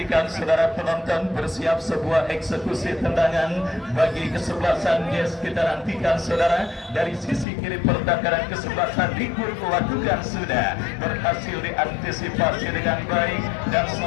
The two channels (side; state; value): right; drops out; at 7.5 s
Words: saudara penonton bersiap sebuah eksekusi tendangan bagi kesebelasan Jazz. Kita nantikan saudara dari sisi kiri pertahanan kesebelasan Dikbud melakukan sudah berhasil diantisipasi dengan baik, dan